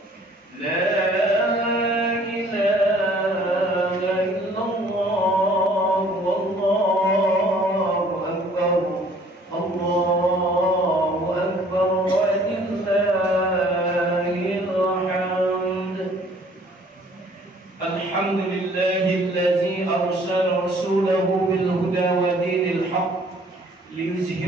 La ilaha illallah, wallahu akbar, Allahu akbar, walillahil hamd. Alhamdulillahillazi arsala rasulahu bil huda wa dinil haqq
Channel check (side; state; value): both; normal; correlation 0.56